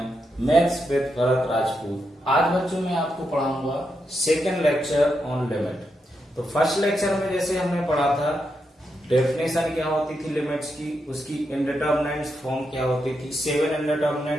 मैथ्स विद भरत राजपूत। आज बच्चों मैं आपको पढ़ाऊंगा सेकेंड लेक्चर ऑन लिमिट। तो फर्स्ट लेक्चर में जैसे हमने पढ़ा था डेफिनेशन क्या होती थी लिमिट्स की, उसकी इंडिटरमिनेट्स फॉर्म क्या होती थी, 7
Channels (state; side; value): normal; both; correlation 0.84